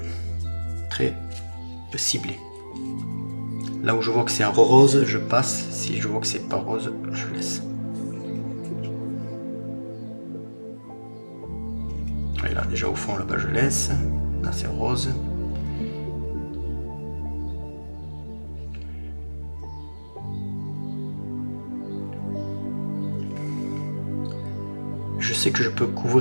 ciblé. Là où je vois que c'est un rose, je passe. Si je vois que c'est pas rose, je laisse. Et là, déjà au fond, là-bas, je laisse. Là, c'est rose. Je sais que je peux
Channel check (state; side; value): inverted; both; correlation -1.00